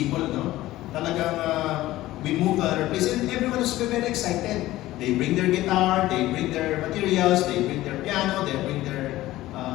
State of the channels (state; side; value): quieter; right; 16.2 dB